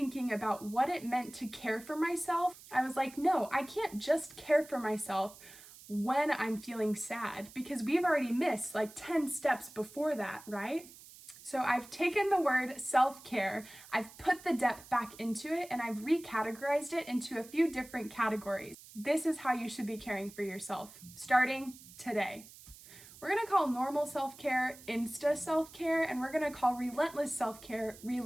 about what it meant to care for myself, I was like, no, I can't just care for myself when I'm feeling sad, because we've already missed like 10 steps before that, right? So I've taken the word self-care, I've put the depth back into it, and I've recategorized it into a few different categories. This is how you should be caring for yourself, starting today. We're gonna call normal self-care Insta self-care, and we're gonna call relentless self-care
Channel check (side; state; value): right; noise; hiss, 19 dB below the sound